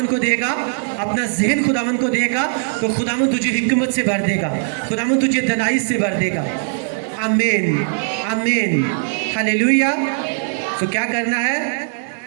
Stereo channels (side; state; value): left; silent; 55 dB below the other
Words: को देगा, अपना जहन खुदावन को देगा, तो खुदावन तुझे हिकमत से भर देगा, खुदावन तुझे दनाई से भर देगा। आमीन आमीन हालेलुया। तो क्या करना है?